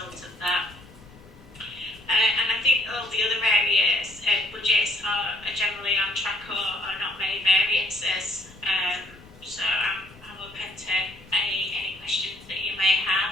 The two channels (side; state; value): both; normal; correlation 0.65